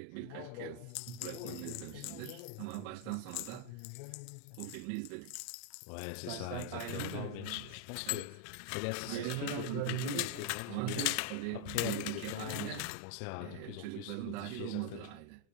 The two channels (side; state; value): both; different; correlation 0.01